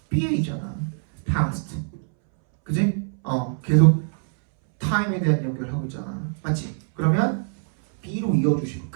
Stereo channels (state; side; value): silent; left; 63 dB below the other